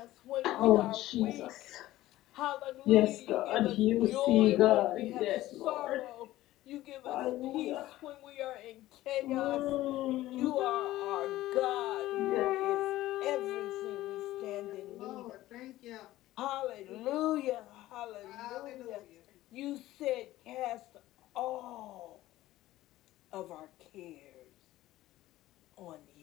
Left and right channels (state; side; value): quieter; right; 15.8 dB